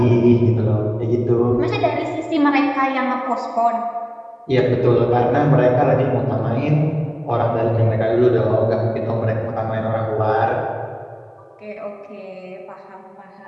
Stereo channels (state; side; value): identical; both; correlation 1.00